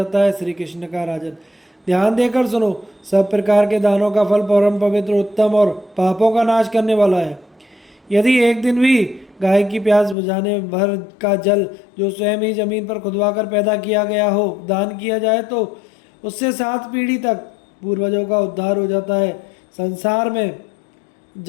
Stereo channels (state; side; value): drops out; right; at 10.2 s